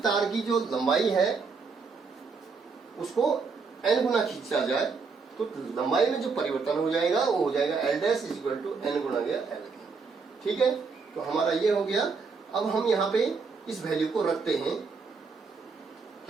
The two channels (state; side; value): quieter; left; 4.9 dB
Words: तार की जो लंबाई है उसको n गुना खींचा जाए, तो लंबाई में जो परिवर्तन हो जाएगा वो हो जाएगा L dash is equal to n गुना गया एल के। ठीक है, तो हमारा ये हो गया। अब हम यहाँ पे इस वैल्यू को रखते हैं